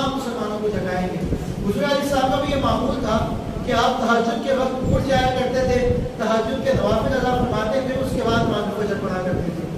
مسلمانوں کو جگائیں گے. حضور علیہ السلام کا بھی یہ معمول تھا کہ آپ تہجد کے وقت اٹھ جایا کرتے تھے, تہجد کے نوافل ادا فرماتے تھے, اس کے بعد نماز فجر پڑھا کرتے تھے,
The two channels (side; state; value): both; identical; correlation 1.00